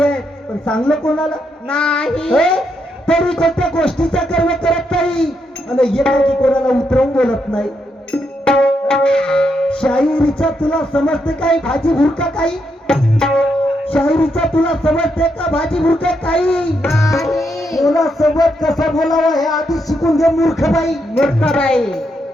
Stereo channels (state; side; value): normal; both; correlation 0.80